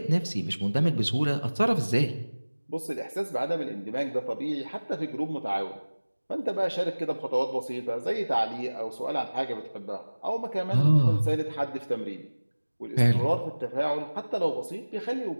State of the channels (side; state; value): both; inverted; correlation -1.00